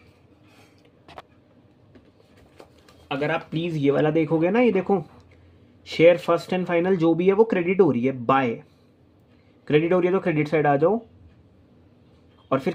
अगर आप प्लीज़ ये वाला देखोगे ना, ये देखो शेयर फर्स्ट एंड फाइनल जो भी है वो क्रेडिट हो रही है, बाय क्रेडिट हो रही है, तो क्रेडिट साइड आ जाओ और फिर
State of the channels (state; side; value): identical; both; correlation 1.00